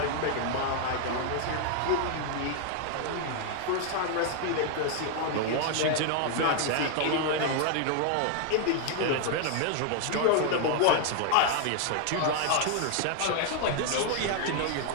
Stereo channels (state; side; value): different; both; correlation 0.00